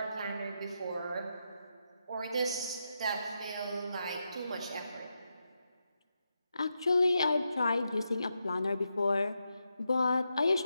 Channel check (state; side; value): inverted; both; correlation -0.85